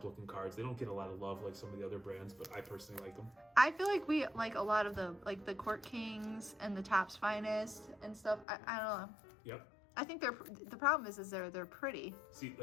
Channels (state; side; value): drops out; right; at 8.5 s